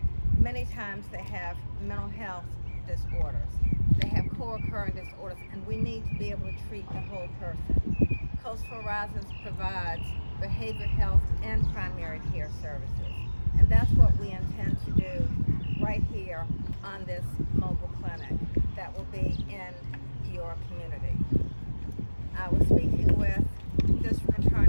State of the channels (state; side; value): inverted; both; correlation -1.00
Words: many times they have mental health disorders. They have co-occurring disorders, and we need to be able to treat the whole person. Coastal Horizons provides behavioral health, and primary care services. And that's what we intend to do right here on this mobile clinic that will be in your community. I was speaking with District